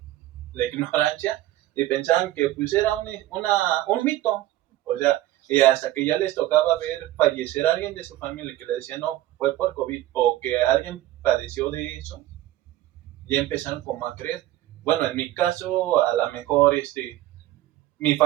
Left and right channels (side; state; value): left; quieter; 15.0 dB